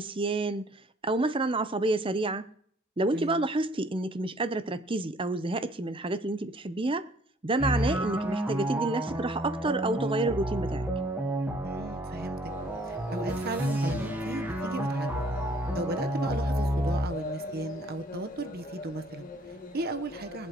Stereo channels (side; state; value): both; normal; correlation 0.59